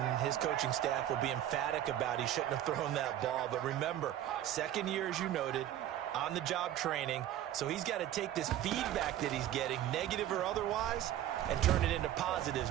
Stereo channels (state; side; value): quieter; left; 12.1 dB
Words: his coaching staff will be emphatic about he shouldn't have thrown that ball. But remember, second year, as you noted, on-the-job training, so he's got to take this feedback that he's getting, negative or otherwise, and turn it into positives